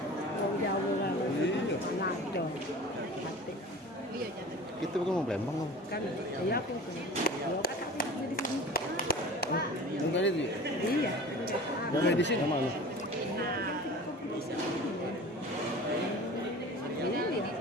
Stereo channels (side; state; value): both; normal; correlation 0.38